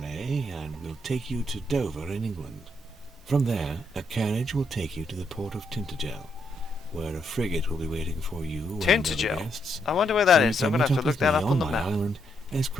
and will take you to Dover in England. From there, a carriage will take you to the port of Tintagel, where a frigate will be waiting for you and other Tintagel? guests. I wonder where that So is. you I'm can going to have meet to look with that me up on the my map. island as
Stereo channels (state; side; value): normal; both; correlation 0.77